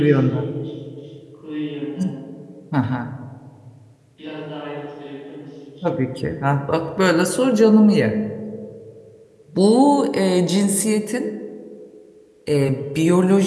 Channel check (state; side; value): identical; both; correlation 1.00